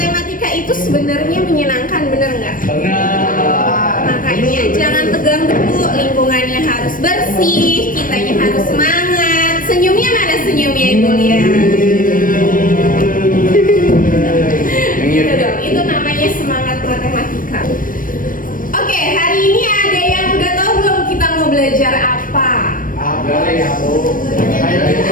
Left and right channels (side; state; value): right; late; 0.40 ms